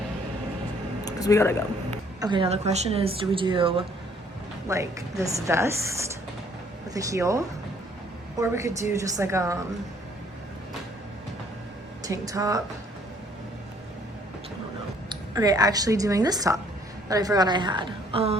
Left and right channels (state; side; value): normal; both; correlation 0.62